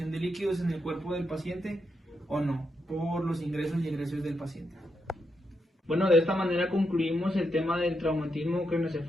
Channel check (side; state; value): both; normal; correlation 0.82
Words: de líquidos en el cuerpo del paciente o no, por los ingresos y egresos del paciente. Bueno, de esta manera concluimos el tema del traumatismo